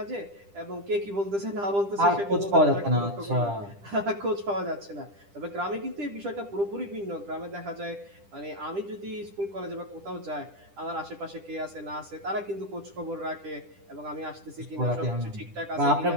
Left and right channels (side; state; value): left; late; 10 ms